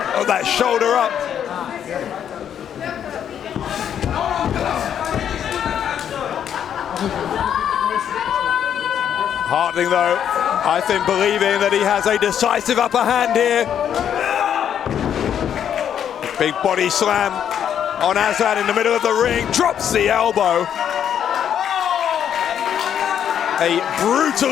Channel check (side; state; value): right; quieter; 9.1 dB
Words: that shoulder up. Harting, though, I think believing that he has a decisive upper hand here. Big body slam on Aslan in the middle of the ring, drops the elbow. A